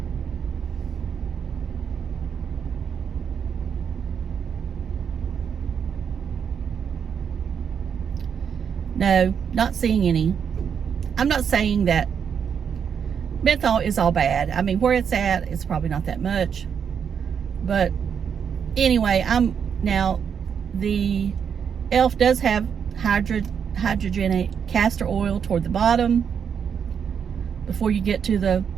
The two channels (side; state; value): left; quieter; 7.3 dB